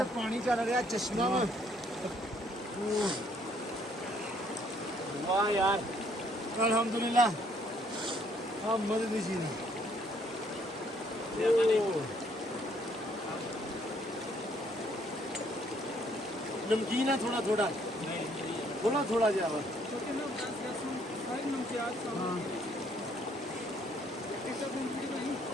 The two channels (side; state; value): both; normal; correlation 0.66